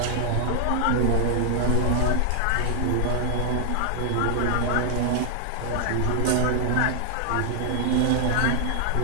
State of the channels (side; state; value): both; different; correlation 0.00